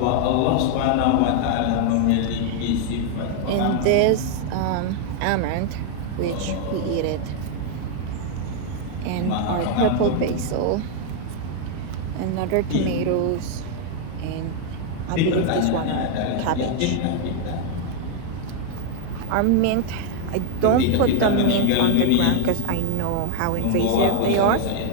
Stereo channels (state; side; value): different; both; correlation 0.00